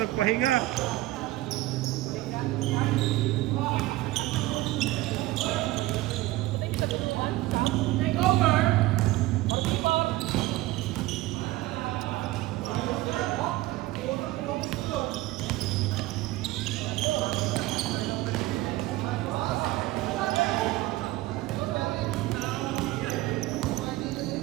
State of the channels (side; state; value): left; quieter; 17.7 dB